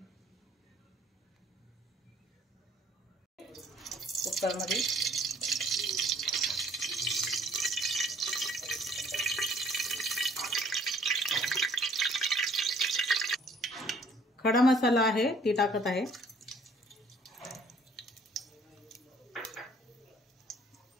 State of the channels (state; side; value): normal; both; correlation 0.58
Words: कुकर मध्ये खडा मसाला आहे ती टाकत आहे।